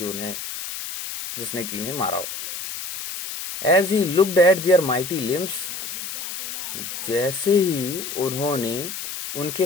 उन्हें, जिसने कि इन्हें मारा हो। As he looked at their mighty limbs, जैसे ही उन्होंने उनके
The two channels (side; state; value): left; noise; hiss, 7 dB below the sound